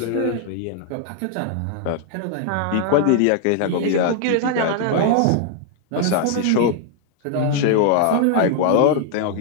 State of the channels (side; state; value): both; different; correlation 0.00